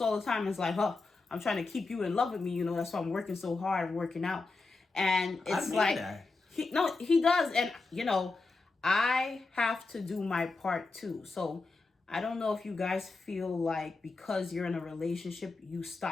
all the time. It's like, I'm trying to keep you in love with me. That's why I'm working so hard, working out. And it's like, that. He does. And, I have to do my part too. So I don't know if you guys feel like because you're in a relationship, you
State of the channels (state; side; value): quieter; right; 3.7 dB